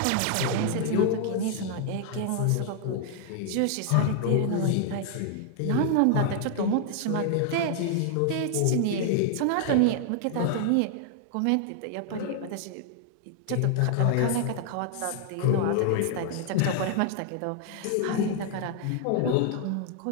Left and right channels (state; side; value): different; both; correlation 0.00